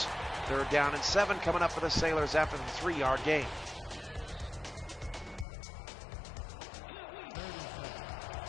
3rd down and 7 coming up for the Sailors after the 3-yard gain.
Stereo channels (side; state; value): right; drops out; at 5.5 s